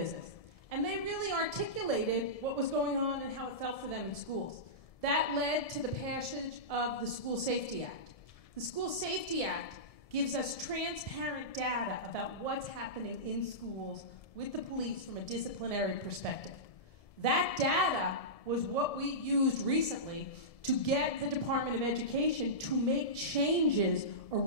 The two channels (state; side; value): late; right; 1.7 ms